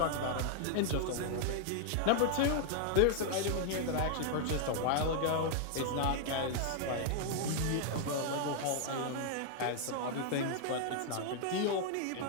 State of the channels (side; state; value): both; different; correlation 0.00